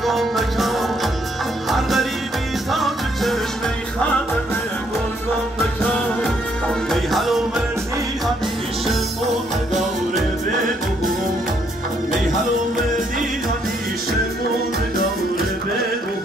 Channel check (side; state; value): both; normal; correlation 0.70